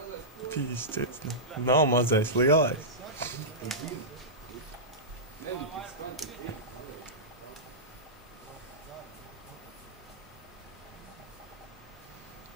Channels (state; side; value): normal; both; correlation -0.14